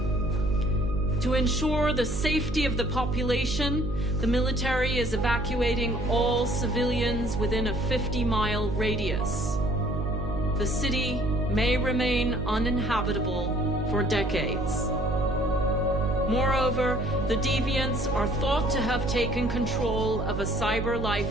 To ensure the safety of the population, the military is evacuating all civilians within a 50-mile radius. The city may remain uninhabitable for decades. Moreover, the deviants are thought to have taken control of a cyber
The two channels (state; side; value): noise; right; hum, 4 dB below the sound